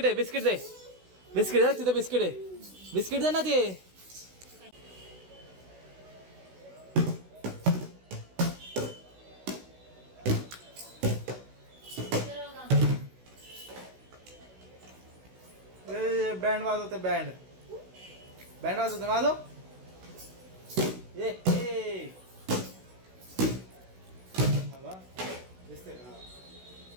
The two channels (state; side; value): late; left; 16 ms